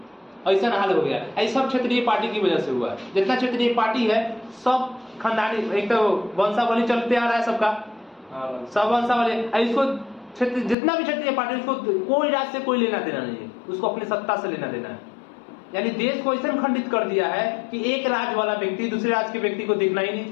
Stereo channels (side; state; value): right; drops out; at 10.8 s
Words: ऐसा हाल हो गया। ऐसा सब क्षेत्रीय पार्टी की वजह से हुआ। जितना क्षेत्रीय पार्टी है सब खानदानी, एक तो वंशावली चलते आ रहा है सबका, सब वंशावली। इसको क्षेत्र जितना भी क्षेत्रीय पार्टी, उसको कोई राज्य से कोई लेना देना नहीं है, उसको अपनी सत्ता से लेना देना है। यानी देश को ऐसा खंडित कर दिया है कि एक राज्य वाला व्यक्ति दूसरे राज्य के व्यक्ति को देखना ही नहीं